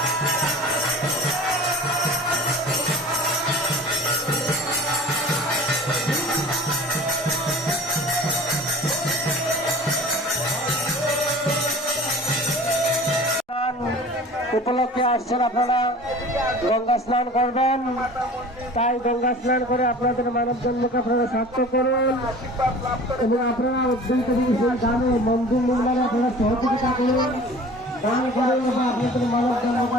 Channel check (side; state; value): both; normal; correlation 0.42